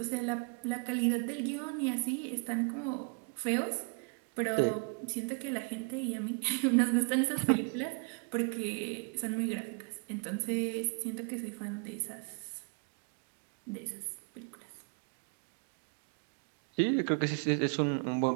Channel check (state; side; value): quieter; left; 37.7 dB